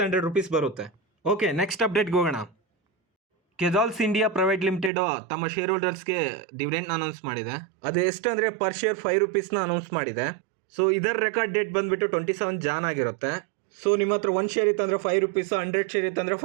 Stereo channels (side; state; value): left; drops out; at 4.9 s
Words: ರೂಪೀಸ್ ಬರುತ್ತೆ. ಓಕೆ, ನೆಕ್ಸ್ಟ್ ಅಪ್ಡೇಟ್ಗೆ ಹೋಗೋಣ. ಕೆಜಾಲ್ಸ್ ಇಂಡಿಯಾ ಪ್ರೈವೇಟ್ ಲಿಮಿಟೆಡ್ ತಮ್ಮ ಶೇರ್ ಹೋಲ್ಡರ್ಸ್ಗೆ ಡಿವಿಡೆಂಡ್ನ ಅನೌನ್ಸ್ ಮಾಡಿದೆ. ಅದು ಎಷ್ಟು ಅಂದರೆ ಪರ್ ಶೇರ್ 5 ರೂಪೀಸ್ನ ಅನೌನ್ಸ್ ಮಾಡಿದೆ. ಸೊ ಇದರ ರೆಕಾರ್ಡ್ ಡೇಟ್ ಬಂದುಬಿಟ್ಟು 27 ಜಾನ್ ಆಗಿರುತ್ತೆ. ಸೊ ನಿಮ್ಮ ಹತ್ರ 1 ಶೇರ್ ಇತ್ತಂದರೆ 5 ರೂಪೀಸು, 100 ಶೇರ್ ಇತ್ತಂದರೆ